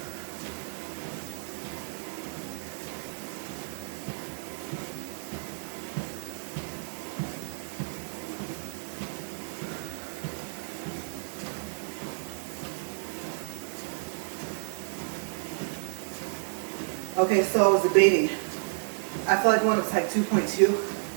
Okay, so I was debating. I feel like one was like 2.2,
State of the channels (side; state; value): left; silent; 57 dB below the other